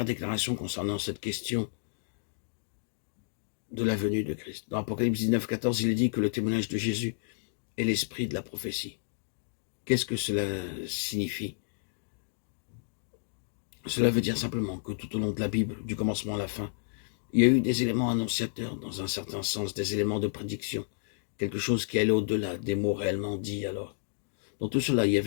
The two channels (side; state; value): right; silent; digital silence